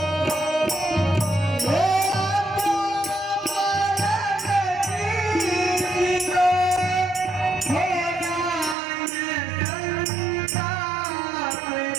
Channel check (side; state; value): left; drops out; at 8.8 s